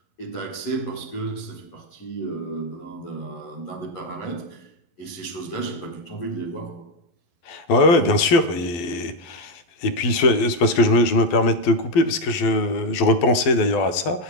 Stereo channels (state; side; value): late; right; 12 ms